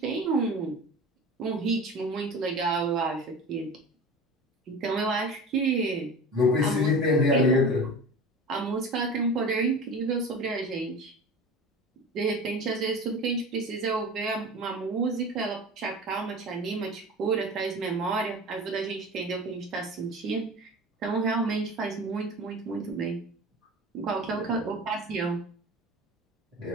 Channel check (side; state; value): both; normal; correlation 0.34